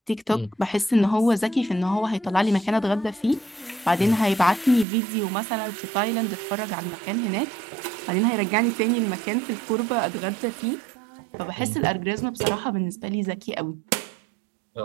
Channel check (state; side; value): drops out; left; at 4.9 s